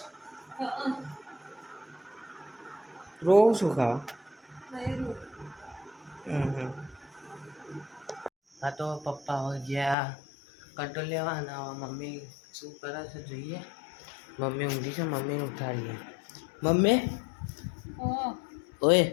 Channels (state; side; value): drops out; right; at 10.0 s